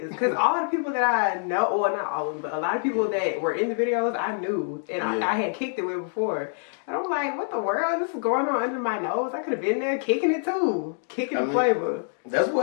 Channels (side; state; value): right; silent; digital silence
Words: Because all the people that I know, well, not all of them, but a lot of people that were in the videos, I knew. And I had kicked it with before. And I'm like, what the world? This is going on under my nose. I could have been there kicking it too. Kickin Flavor. That's